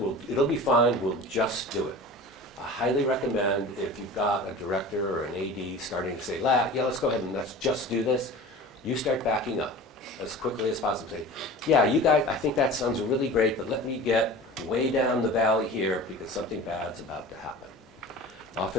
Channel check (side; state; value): both; normal; correlation 0.37